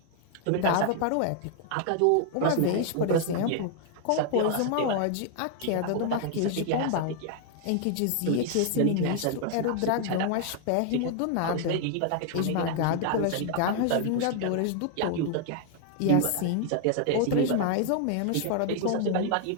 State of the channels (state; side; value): different; both; correlation 0.00